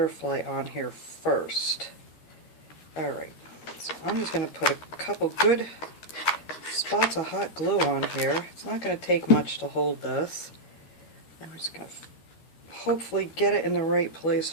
on here first. Alright, so I'm just going to put a couple good spots of hot glue on here. It's not going to take much to hold this. And we're just going to hopefully get it in the right place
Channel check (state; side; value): late; right; 13 ms